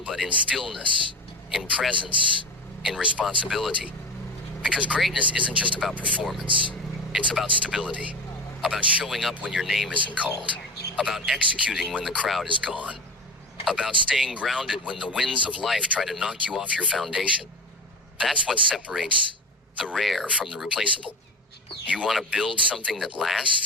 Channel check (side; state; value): both; normal; correlation 0.27